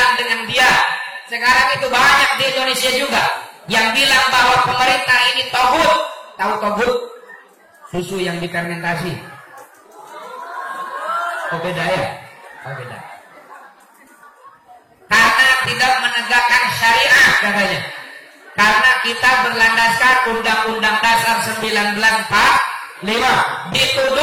dengan dia. Sekarang itu banyak di Indonesia juga yang bilang bahwa pemerintah ini togut. Tahu togut? Susu yang difermentasi. Oh beda ya? Oh beda. Karena tidak menegakkan syariah katanya. Karena kita berlandaskan Undang-Undang Dasar 1945,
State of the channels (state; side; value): identical; both; correlation 1.00